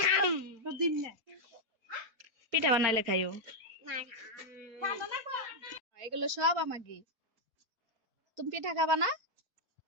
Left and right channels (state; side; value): late; left; 4.2 ms